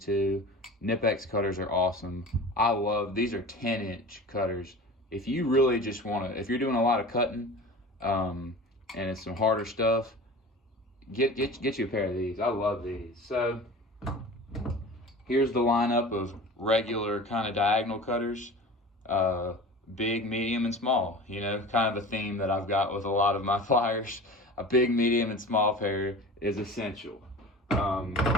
Nipex cutters are awesome. These are 10-inch cutters. if you really just want to, if you're doing a lot of cutting, and it's some harder stuff, get you a pair of these. I love these. So here's the lineup of regular kind of diagonal cutters, big, medium, and small. You know, kind of a theme that I've got with a lot of my pliers. A big, medium, and small pair is essential.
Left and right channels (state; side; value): normal; both; correlation 0.36